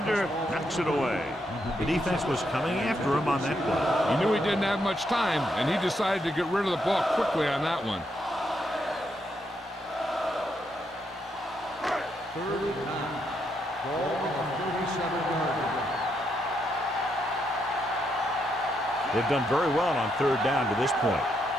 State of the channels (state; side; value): normal; both; correlation 0.78